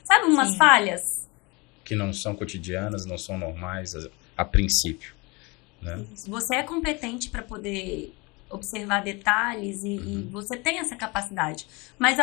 Sabe umas falhas? Que não são cotidianas, não são normais a princípio, né? Você é competente para poder observar detalhes e você tem essa capacidade. Mas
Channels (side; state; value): right; quieter; 26.5 dB